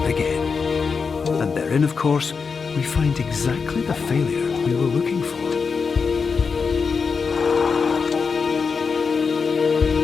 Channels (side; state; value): right; quieter; 5.3 dB